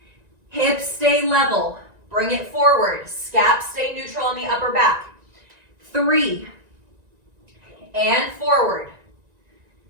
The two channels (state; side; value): late; left; 1.9 ms